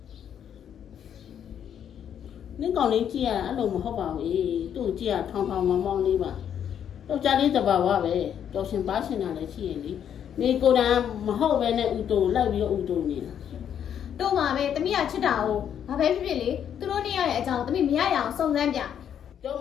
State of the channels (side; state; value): right; quieter; 9.0 dB